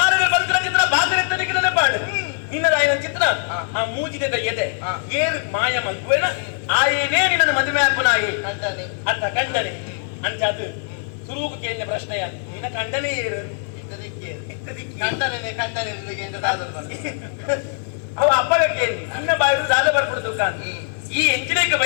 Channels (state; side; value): silent; right; 62 dB below the other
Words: ಬಂದ್ರ ಚಿತ್ರ ಬಾಕರಿತ್ತನೆ ಕಿಡದ ಪಾಡು ನಿನ್ನದಾಯಿನ ಚಿತ್ರ ಆ ಮೂಜಿದ ಎದೆ ಏರ್ ಮಾಯ ಮಂಕುವೆನ ಆಯೇನೇ ನಿನ್ನ ಮದುವೆ ಅಪ್ಪನಾಯೇ ಅತ್ತ ಕಂಡನೆ ಅಂಚಾದು ಸುರುವು ಕೇಳಿನ ಪ್ರಶ್ನೆಯ ನಿನ್ನ ಕಂಡನೆ ಏರು ಅವ ಅಪ್ಪಗ ಕೇಳಿ ಇನ್ನ ಬಾಯಿಡು ದಾದ ಬರ್ಪಡುದು ಕಾಂತಿ ಈ ಎಂಚಿನೇಕ